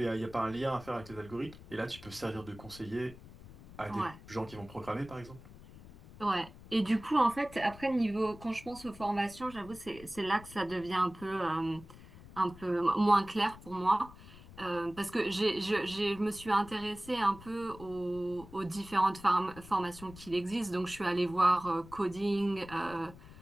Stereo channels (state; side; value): noise; left; rumble, 18 dB below the sound